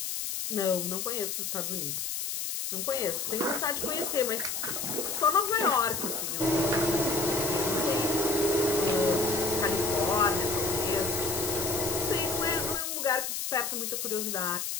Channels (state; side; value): noise; left; hiss, 3 dB below the sound